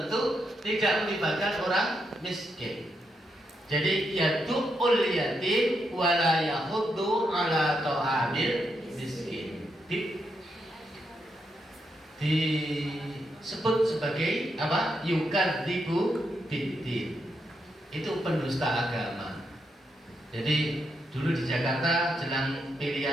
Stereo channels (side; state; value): both; normal; correlation 0.81